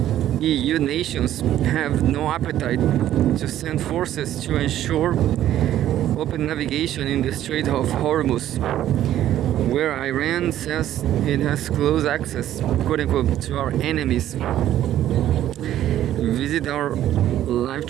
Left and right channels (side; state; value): left; quieter; 12.3 dB